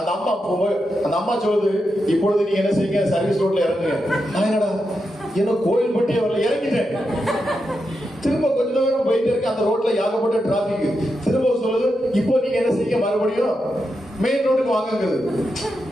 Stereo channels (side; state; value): both; normal; correlation 0.86